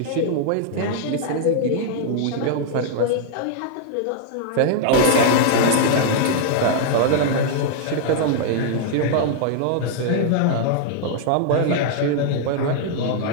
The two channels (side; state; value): both; different; correlation -0.01